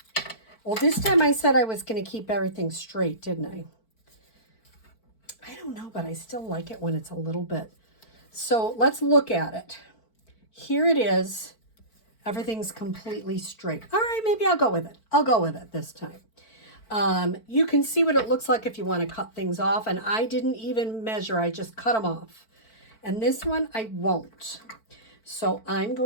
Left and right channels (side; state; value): right; late; 4.5 ms